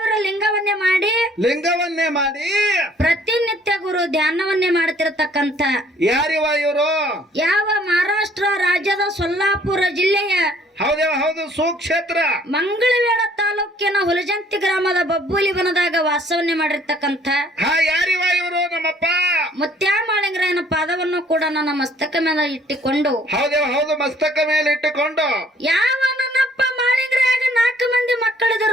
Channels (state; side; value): normal; both; correlation 0.59